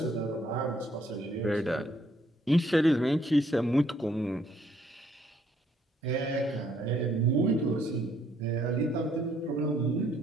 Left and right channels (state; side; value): normal; both; correlation 0.67